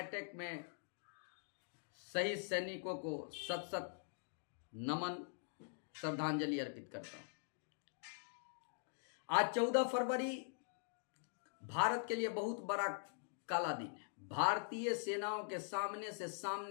में शहीद सैनिकों को सत सत नमन, श्रद्धांजलि अर्पित करता हूं। आज 14 फरवरी भारत के लिए बहुत बड़ा काला दिन है। भारतीय सेनाओं के सामने से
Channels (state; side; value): silent; right; digital silence